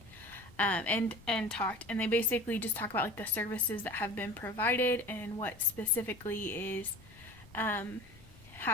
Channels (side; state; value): left; noise; rumble, 23 dB below the sound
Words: and talked, and they basically just talk about like the services that have been provided and what specifically is